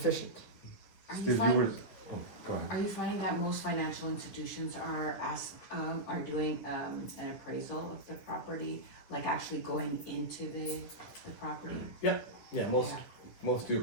Are you Steve, you finding, were, oh, go ahead. are you finding that most financial institutions are doing an appraisal of the property, like actually going into the property? Yeah, most do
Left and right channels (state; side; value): late; right; 10 ms